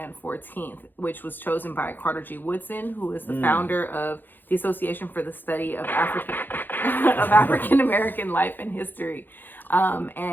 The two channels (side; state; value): right; late; 0.091 ms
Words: 14th, which was chosen by Carter G. Woodson, who is the founder of the Association for the Study of African American Life and History.